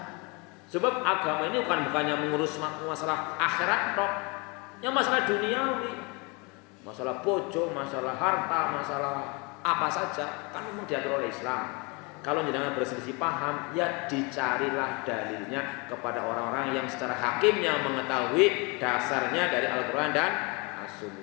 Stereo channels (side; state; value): right; quieter; 29.3 dB